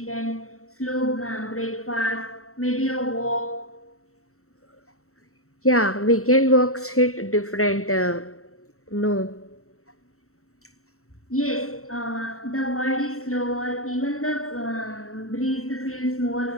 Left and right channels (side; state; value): right; late; 0.64 ms